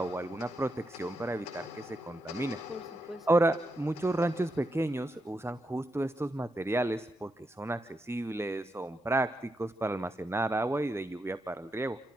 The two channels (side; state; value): both; normal; correlation 0.84